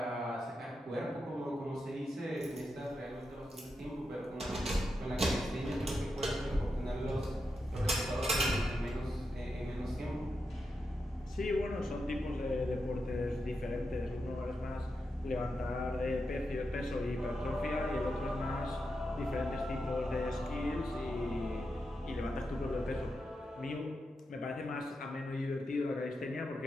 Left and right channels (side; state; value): both; normal; correlation 0.87